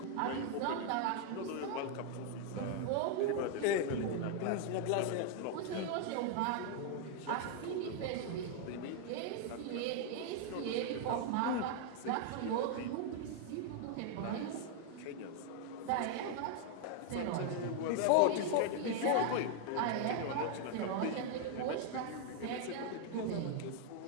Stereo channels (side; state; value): both; different; correlation 0.00